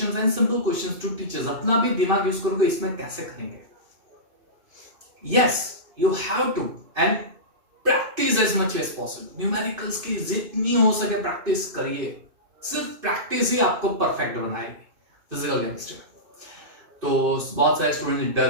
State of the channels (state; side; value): late; left; 2.5 ms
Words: and simple questions to teachers, अपना भी दिमाग यूज करोगे, इसमें कैसे करेंगे? Yes, you have to, and practice as much as possible. Numericals की जितनी हो सके प्रैक्टिस करिए, सिर्फ प्रैक्टिस ही आपको परफेक्ट बनाएगी फिजिकल केमिस्ट्री में। तो बहुत सारे स्टूडेंट